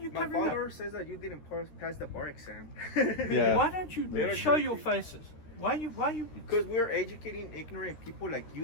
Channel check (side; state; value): right; late; 13 ms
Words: My covering up? father says that you didn't pass the bar exam. Yeah. Why don't you They're show crazy. your faces? Why you? Because we're educating ignorant people like